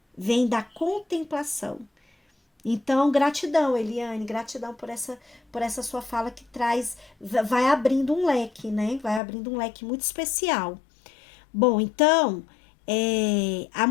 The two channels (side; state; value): right; drops out; at 9.2 s